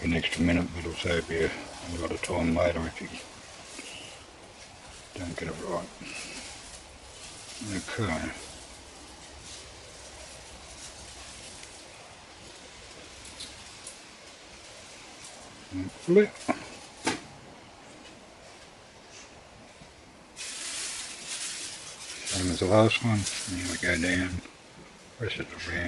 an extra minute, but it'll save you a lot of time later if you don't get it right. Okay. Flip. Same as the last one. Now we go down, press it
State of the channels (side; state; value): both; identical; correlation 1.00